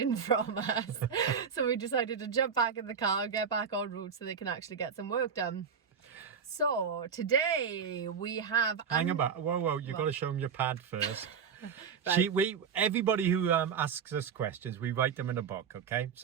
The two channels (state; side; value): quieter; left; 6.7 dB